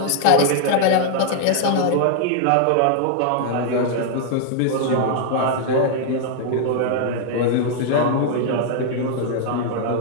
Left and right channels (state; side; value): different; both; correlation 0.00